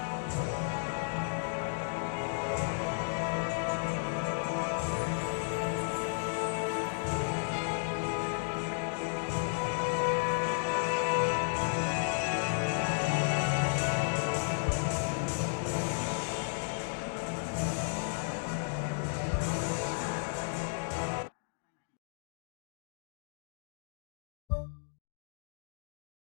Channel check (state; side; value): silent; right; digital silence